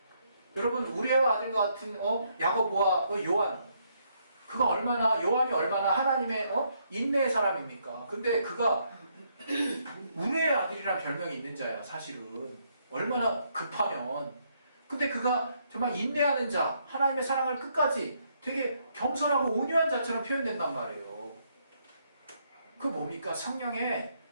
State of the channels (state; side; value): inverted; both; correlation -0.73